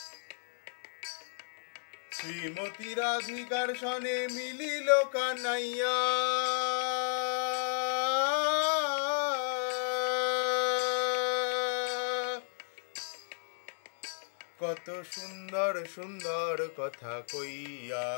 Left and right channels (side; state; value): right; silent; digital silence